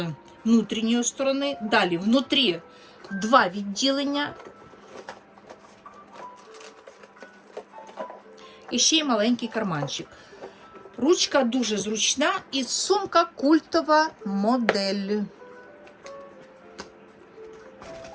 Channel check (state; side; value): identical; both; correlation 1.00